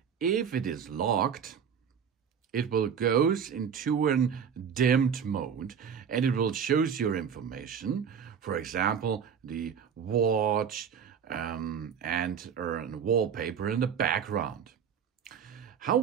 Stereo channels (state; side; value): quieter; left; 7.4 dB